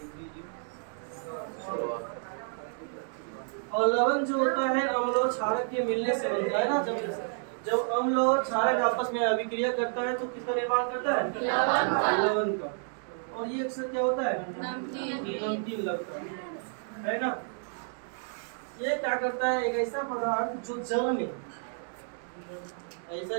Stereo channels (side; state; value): left; silent; 58 dB below the other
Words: और लवण जो होता है अम्ल और क्षारक के मिलने से बनता है ना। जब अम्ल और क्षारक आपस में अभिक्रिया करता है तो किसका निर्माण करता है? लवण का। और ये अक्सर क्या होता है? नमकीन लगता है ना। ये क्या करता है? एक ऐसा पदार्थ जो जल में, ऐसा